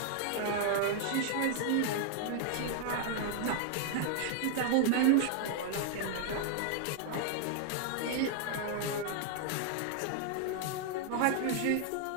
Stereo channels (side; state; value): both; different; correlation 0.00